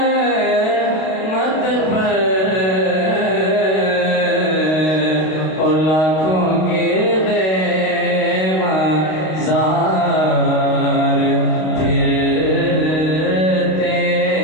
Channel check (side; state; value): right; late; 32 ms